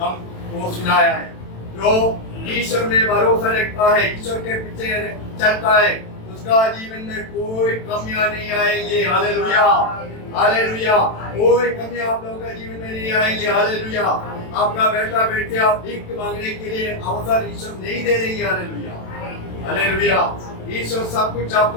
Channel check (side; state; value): right; late; 27 ms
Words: वो सुनाया है। जो ईश्वर में भरोसा रखता है, ईश्वर के पीछे चलता है, उसका जीवन में कोई कमियां नहीं आएंगी। Hallelujah, hallelujah. कोई कमी आप लोगों का जीवन में नहीं आएंगी। हालेलुया। आपका बेटा बेटे आप भीख मांगने के लिए अवसर ईश्वर नहीं दे देंगे। Hallelujah, hallelujah. ईश्वर सब कुछ